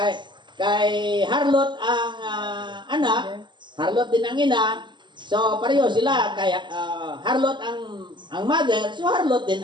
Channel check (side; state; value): left; late; 0.22 ms